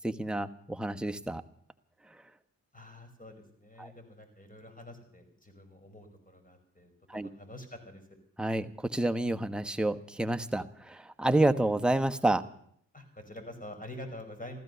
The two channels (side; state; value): both; normal; correlation 0.91